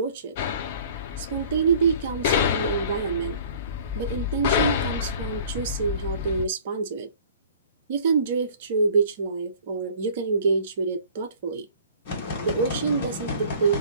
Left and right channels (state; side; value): inverted; both; correlation -0.49